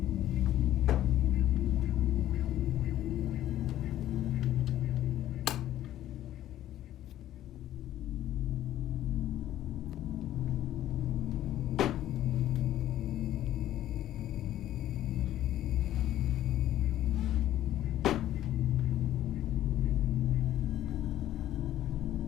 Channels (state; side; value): quieter; right; 12.9 dB